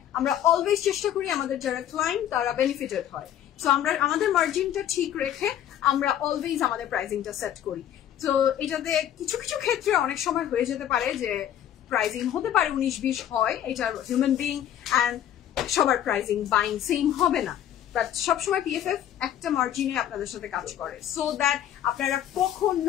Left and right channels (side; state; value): right; quieter; 10.8 dB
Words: আমরা অলওয়েজ চেষ্টা করি আমাদের যারা ক্লায়েন্ট তারা বেনিফিটেড হয়। সো আমরা আমাদের মার্জিনটা ঠিক রেখে আমরা অলওয়েজ আমাদের প্রাইসিংটা সেট করি। তো এটাতে কিছু কিছু ক্ষেত্রে অনেক সময় হয়ে যেতে পারে যে প্রাইসিং হতে পারে 19-20 হয়, এটা হিউম্যান বিং অ্যান্ড সবার প্রাইসিং বাইং সেম হবে না, বাট সবসময় পিএফএফ একটা মার্জিনে আপনাদের সাথে কাজ করে, সো দ্যাট আপনারা